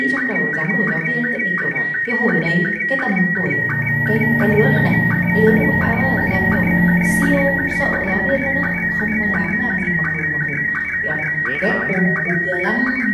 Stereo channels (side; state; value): both; identical; correlation 1.00